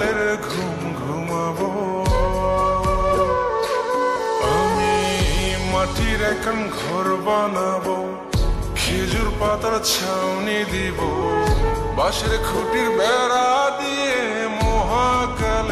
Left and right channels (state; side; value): identical; both; correlation 1.00